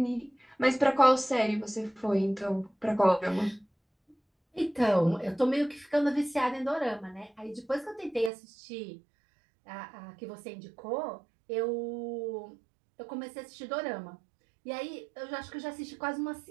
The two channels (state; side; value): drops out; left; at 8.3 s